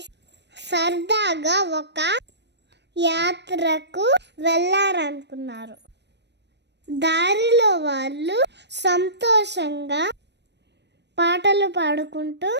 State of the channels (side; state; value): left; late; 0.50 ms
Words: సరదాగా ఒక యాత్రకు వెళ్ళారనుకున్నారు. దారిలో వాళ్ళు సంతోషంగా పాటలు పాడుకుంటూ